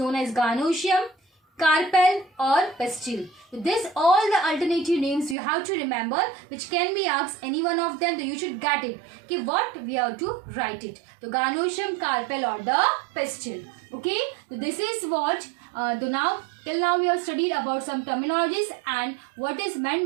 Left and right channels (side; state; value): left; drops out; at 5.4 s